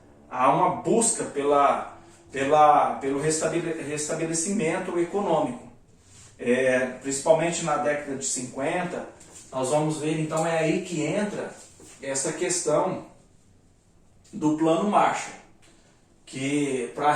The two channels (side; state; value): both; identical; correlation 1.00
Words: Há uma busca pelo restabelecimento econômico. Principalmente na década de 50, nós vamos ver, então é aí que entra essa questão do Plano Marshall, que para